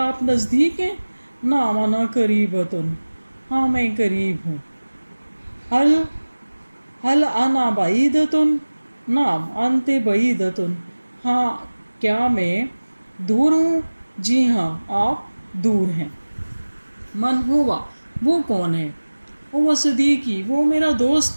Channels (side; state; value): both; inverted; correlation -1.00